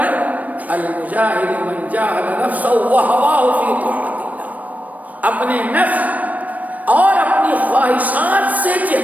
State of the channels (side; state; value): left; late; 0.073 ms